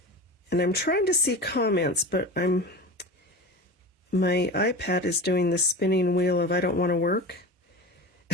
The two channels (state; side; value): normal; both; correlation 0.30